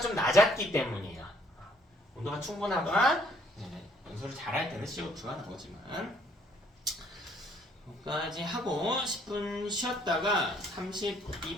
좀 낮았기 때문이에요. 온도가 충분하거나 연소를 잘할 때는 CO2가 나오지만 여기까지 하고 10분 쉬었다가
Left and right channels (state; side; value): normal; both; correlation 0.65